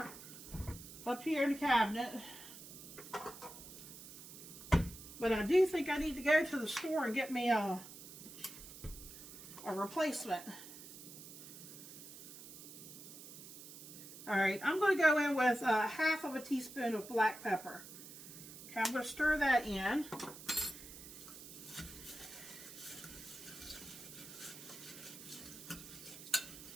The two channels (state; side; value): noise; right; hiss, 14 dB below the sound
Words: up here in the cabinet. But I do think I need to go to the store and get me a replacement. Alright, I'm going to go in with half of a teaspoon of black pepper. Okay, I'm going to stir that in.